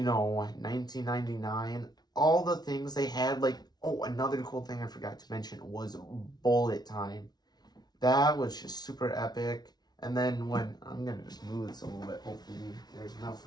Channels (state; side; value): late; right; 0.19 ms